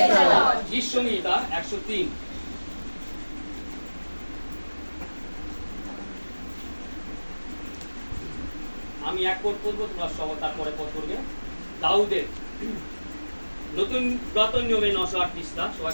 the Lord. গীত সংহিতা 103। আমি এক পদ পড়বো, তোমরা সবাই তারপরে পদ করবে। দাউদের নতুন পুরাতন নিয়মে 908 পৃষ্ঠা, সবাই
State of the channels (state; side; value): inverted; both; correlation -1.00